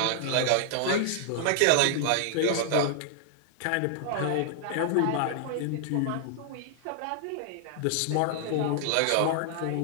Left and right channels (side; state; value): both; different; correlation -0.01